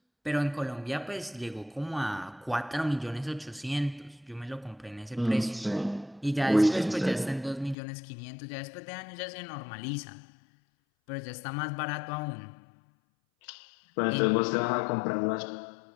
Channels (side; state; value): right; drops out; at 7.8 s